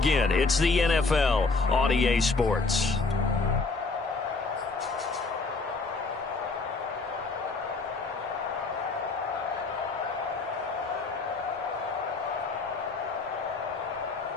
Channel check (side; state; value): right; quieter; 3.9 dB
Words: It's the NFL on EA Sports.